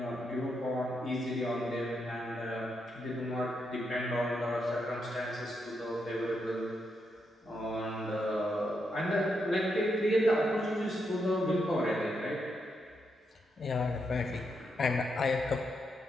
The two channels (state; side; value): normal; both; correlation 0.81